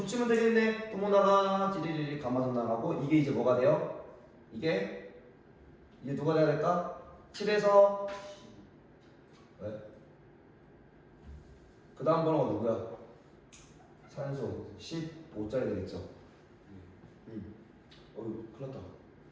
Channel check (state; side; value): identical; both; correlation 1.00